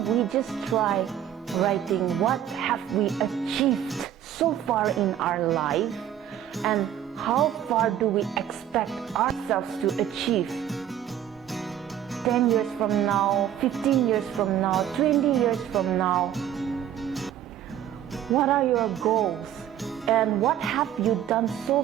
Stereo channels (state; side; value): quieter; left; 10.7 dB